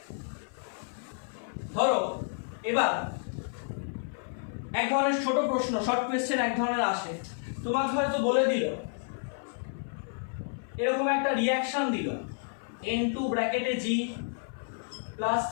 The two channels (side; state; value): right; silent; 57 dB below the other